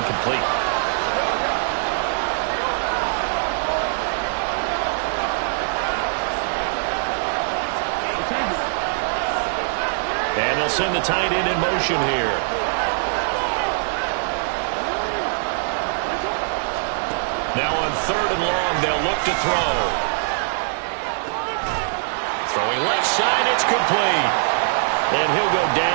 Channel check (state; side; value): silent; left; digital silence